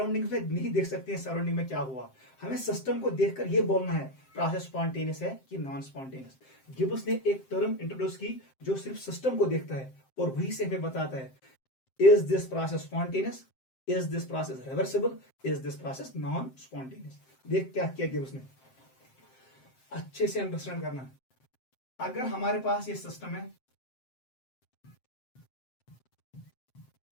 में नहीं देख सकते हैं सराउंडिंग में क्या हुआ, हमें सिस्टम को देखकर ये बोलना है प्रोसेस स्पॉन्टेनियस है कि नॉन स्पॉन्टेनियस। गिब्स ने एक टर्म इंट्रोड्यूस की जो सिर्फ सिस्टम को देखता है और वही से हमें बताता है is this process spontaneous, is this process reversible, is this process non spontaneous. देख क्या किया गिब्स ने, अच्छे से अंडरस्टैंड करना। अगर हमारे पास ये सिस्टम है,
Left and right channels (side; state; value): right; late; 7.6 ms